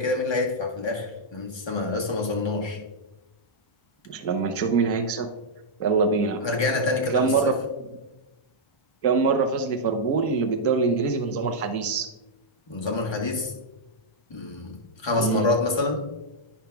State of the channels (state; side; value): late; right; 1.3 ms